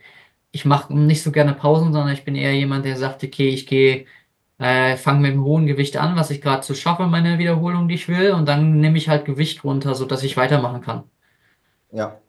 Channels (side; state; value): both; identical; correlation 1.00